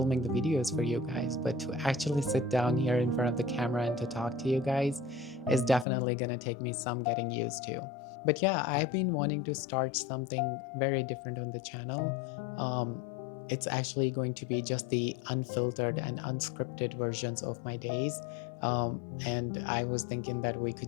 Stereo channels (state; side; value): drops out; right; at 5.9 s